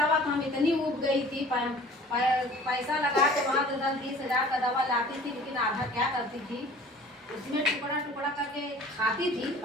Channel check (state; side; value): normal; both; correlation 0.47